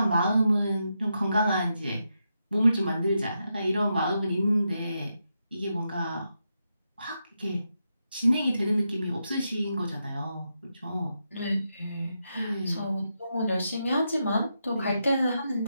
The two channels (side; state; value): both; inverted; correlation -0.85